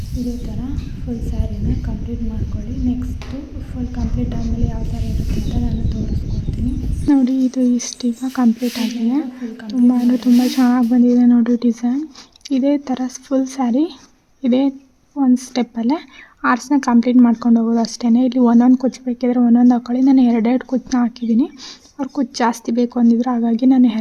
ಇದೇ ಥರ ಫುಲ್ ಸ್ಯಾರಿನ ಕಂಪ್ಲೀಟ್ ಮಾಡ್ಕೊಳ್ಳಿ. ನೆಕ್ಸ್ಟು ಫುಲ್ ಕಂಪ್ಲೀಟ್ ಆದಮೇಲೆ ಯಾವ ಥರ ಇರುತ್ತೆ ಅಂತ ನಾನು ತೋರಿಸ್ಕೊಡ್ತೀನಿ. ನೋಡಿ ಇದು ಇಷ್ಟೀಗ ಕಂಪ್ಲೀಟ್ ಆಗಿದೆ. ತುಂಬ ಅಂದರೆ ತುಂಬ ಚೆನ್ನಾಗಿ ಬಂದಿದೆ ನೋಡಿ ಡಿಸೈನ್. ಇದೇ ಥರ ಫುಲ್ ಸ್ಯಾರಿ ಇದೇ ಒಂದು ಸ್ಟೆಪ್ಪಲ್ಲೇ ಆರ್ಸ್ನ ಕಂಪ್ಲೀಟ್ ಮಾಡ್ಕೊಂಡು ಹೋಗೋದು ಅಷ್ಟೇ. ಇಲ್ಲಿ ಒಂದೊಂದು ಕುಚ್ಚು ಬೇಕಿದ್ರೆ ಒಂದೊಂದು ಹಾಕ್ಕೊಳ್ಳಿ. ನಾನು 2 ಕುಚ್ಚನ್ನ ಹಾಕಿದ್ದೀನಿ. ಅವ್ರು ಕುಚ್ಚು ಜಾಸ್ತಿ ಬೇಕು ಅಂದಿದ್ರು, ಹಾಗಾಗಿ ನಾನು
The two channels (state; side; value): identical; both; correlation 1.00